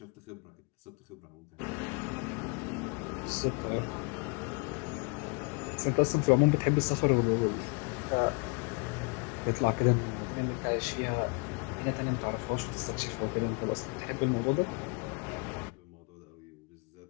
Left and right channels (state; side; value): quieter; right; 35.6 dB